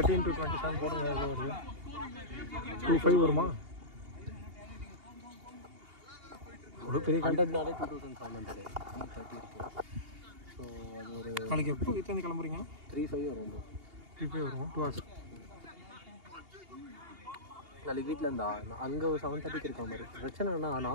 into 27 போடுங்க. எவ்வளோ வருது? 25 வருமா? ஒரு பெரிய கண்டென்ட்னாலே 2700 ஸோ அது ஒரு நாளைக்கு எப்போ வீட்டிலேருந்து கிளம்புறீங்க? 35 வரும். 35 வரும். 2 hours. நாளைக்கு வீட்டில் இருந்தா அங்கே ஒரு 7:30 இருக்க மாதிரி. பிரச்சனைனா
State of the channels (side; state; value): left; late; 2.8 ms